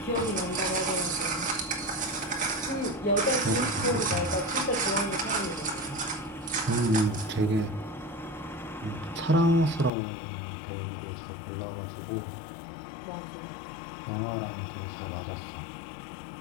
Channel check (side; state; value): right; drops out; at 9.9 s